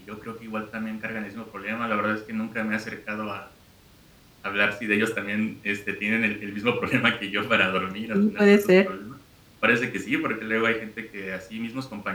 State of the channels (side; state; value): both; identical; correlation 1.00